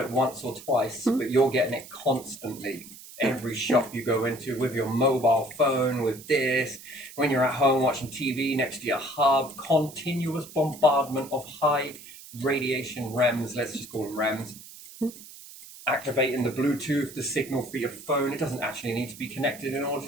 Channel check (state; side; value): noise; right; hiss, 17 dB below the sound